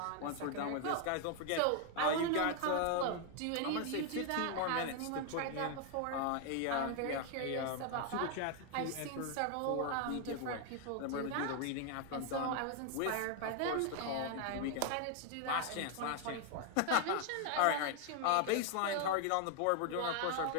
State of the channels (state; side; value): different; both; correlation 0.00